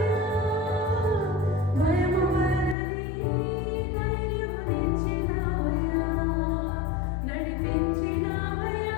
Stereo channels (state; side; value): drops out; right; at 2.8 s